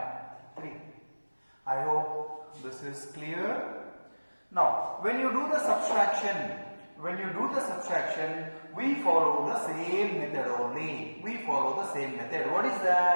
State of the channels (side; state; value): both; inverted; correlation -1.00